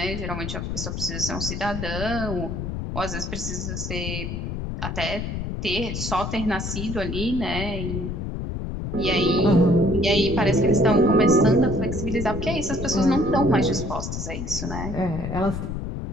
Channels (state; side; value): noise; left; rumble, 4 dB below the sound